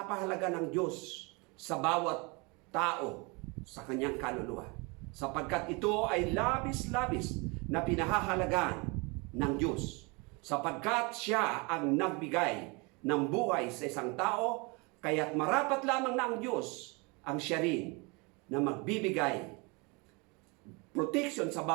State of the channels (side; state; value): left; quieter; 28.8 dB